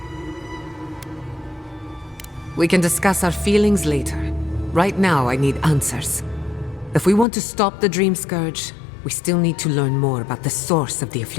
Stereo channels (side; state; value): right; drops out; at 7.2 s